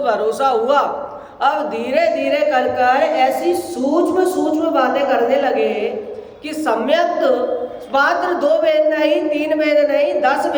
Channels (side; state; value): both; identical; correlation 1.00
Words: भरोसा हुआ। अब धीरे धीरे कर कर ऐसी सूक्ष्म सूक्ष्म बातें करने लगे कि सम्यक मात्र 2 वेद नहीं, 3 वेद नहीं, 10